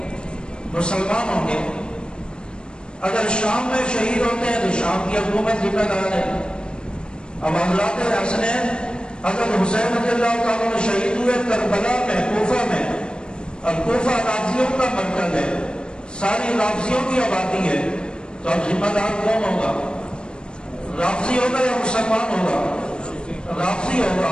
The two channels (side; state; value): right; late; 0.052 ms